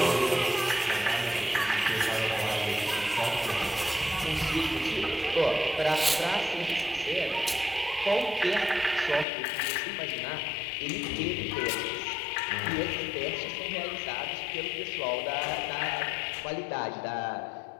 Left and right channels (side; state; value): right; drops out; at 9.2 s